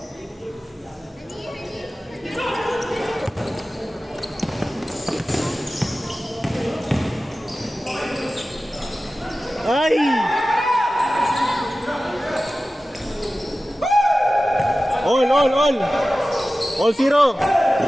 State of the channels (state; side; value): normal; both; correlation 0.95